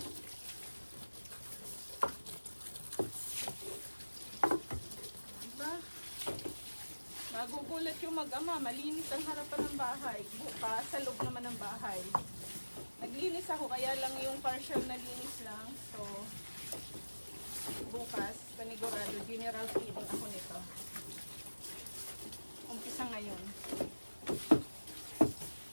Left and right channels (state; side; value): inverted; both; correlation -1.00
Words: Nagugulat yung mag-ama, malinis ang harapan ng bahay. Bukas, sa loob naman ng bahay. Naglinis ako, kaya lang yung partial na linis lang. So, bukas, panigurado, general cleaning ako nito. Umpisa ngayon.